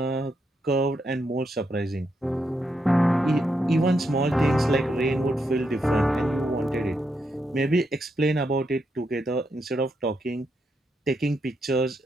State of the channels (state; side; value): normal; both; correlation 0.81